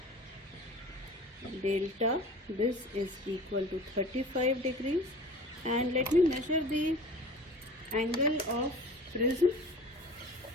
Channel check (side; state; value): both; normal; correlation 0.41